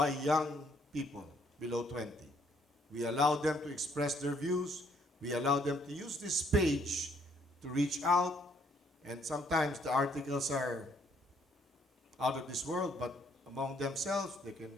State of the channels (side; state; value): both; normal; correlation 0.67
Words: young people below 20. We allow them to express their views. We allow them to use this page to reach out, and sometimes the articles are out of this world, but among themselves, they can